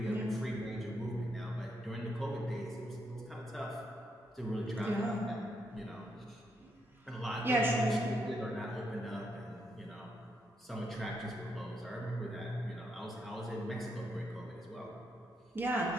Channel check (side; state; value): both; normal; correlation 0.79